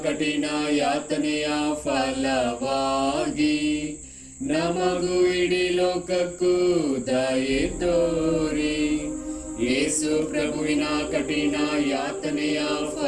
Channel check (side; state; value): both; identical; correlation 1.00